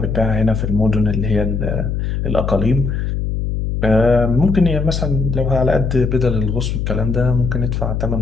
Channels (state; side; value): noise; left; hum, 1 dB below the sound